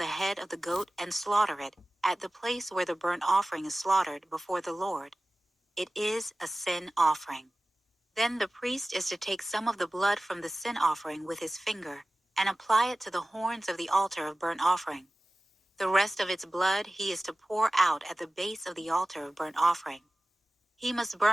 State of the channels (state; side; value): normal; both; correlation 0.96